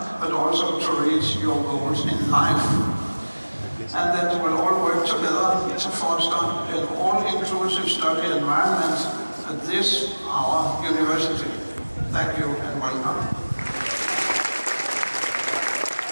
but also to reach your goals in life. And that we'll all work together to foster an all-inclusive study environment at this, our university. Thank you and welcome.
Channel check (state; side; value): inverted; both; correlation -1.00